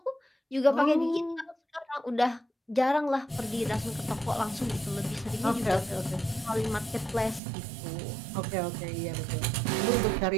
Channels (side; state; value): left; drops out; at 7.4 s